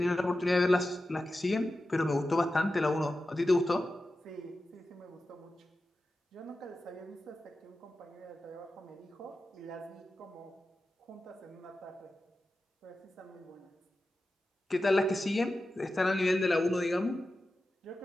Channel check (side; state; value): both; normal; correlation 0.92